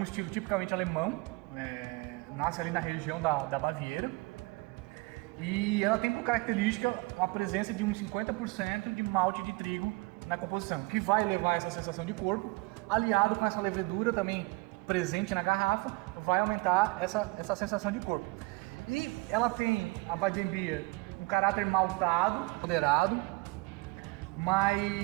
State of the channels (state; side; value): quieter; left; 25.4 dB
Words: estilo tipicamente alemão, nasce ali na região da Baviera. E ela tem por característica a presença de uns 50% de malte de trigo na composição, que vai levar essa sensação de corpo, aliado com essa levedura também presente na garrafa, vai aumentar essa sensação de corpo. E ela tem, a Weizenbier, um caráter maltado, moderado,